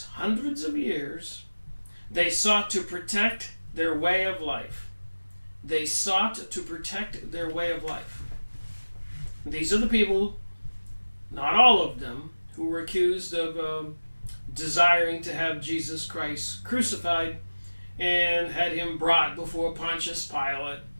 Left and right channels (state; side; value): inverted; both; correlation -1.00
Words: hundreds of years, they sought to protect their way of life. They sought to protect their way of life. These are the people, not all of them, who were accused of desiring to have Jesus Christ crucified and had him brought before Pontius Pilate.